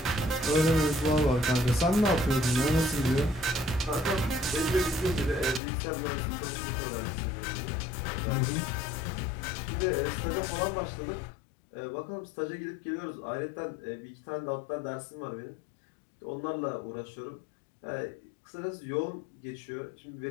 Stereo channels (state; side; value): drops out; right; at 5.6 s